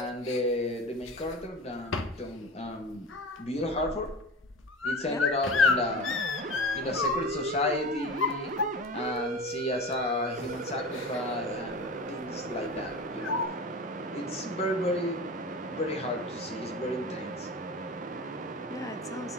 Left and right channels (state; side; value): normal; both; correlation 0.31